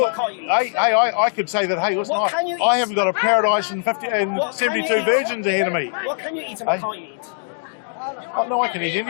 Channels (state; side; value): silent; right; digital silence